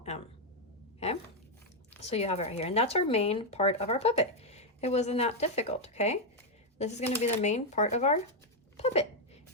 M. Okay, so you have it right here, and that's our main part of our puppet. It wasn't that difficult. Okay, This is going to be the main part of our puppet.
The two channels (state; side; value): normal; both; correlation 0.02